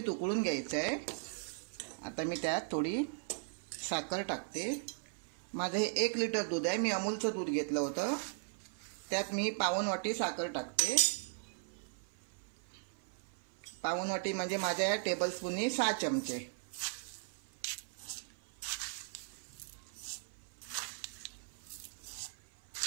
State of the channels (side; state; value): left; silent; 52 dB below the other